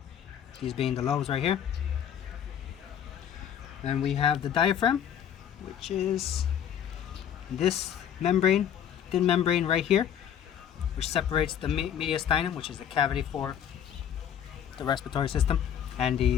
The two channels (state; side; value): quieter; right; 9.3 dB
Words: these being the lobes right here. And we have the diaphragm, which is this membrane, thin membrane right here, which separates the mediastinum, which is the cavity for the respiratory system, and